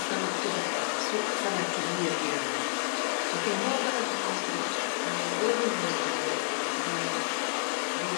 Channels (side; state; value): right; silent; digital silence